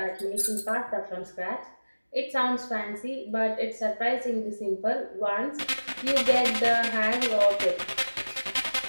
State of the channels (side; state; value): both; inverted; correlation -1.00